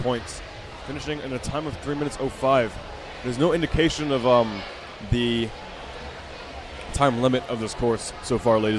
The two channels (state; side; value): identical; both; correlation 1.00